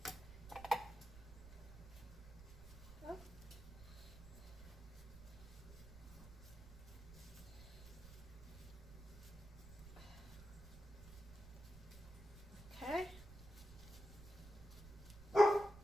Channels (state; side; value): noise; right; rumble, 14 dB below the sound